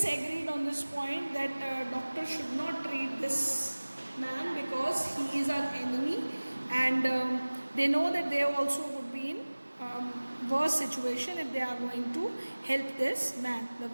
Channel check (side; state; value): both; inverted; correlation -1.00